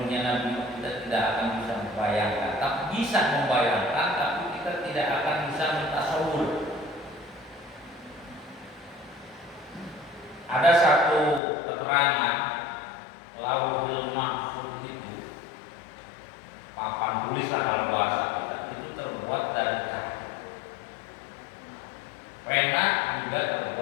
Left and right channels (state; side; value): drops out; right; at 11.4 s